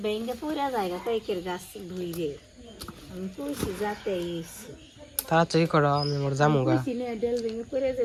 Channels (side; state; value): both; identical; correlation 1.00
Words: ভেঙে পুরা জায়গা পাইকের গাছ ধুইরে। আমি কইছি যাতে তাড়াতাড়ি করো, আমি আমার জামুগা। কইছি না ডেল ভেঙে পড়ে